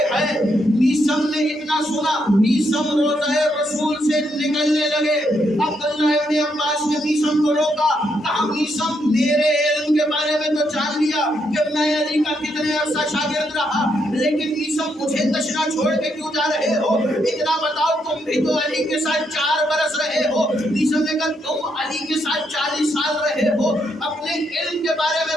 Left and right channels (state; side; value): normal; both; correlation 0.77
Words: ہیں۔ میثم نے اتنا سنا، میثم روضہ رسول سے نکلنے لگے۔ عبداللہ ابن عباس نے میثم کو روکا، کہا میثم میرے علم کے بارے میں تو جان لیا کہ میں علی کا کتنے عرصہ شاگرد رہا، لیکن میثم مجھے تشنا چھوڑ کے کیوں جا رہے ہو؟ اتنا بتاؤ تم بھی تو علی کے ساتھ 4 برس رہے ہو۔ میثم نے کہا تم علی کے ساتھ 40 سال رہے ہو، اپنے علم کے بارے